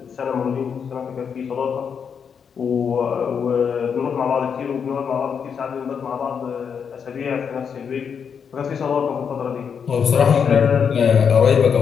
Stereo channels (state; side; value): quieter; right; 6.9 dB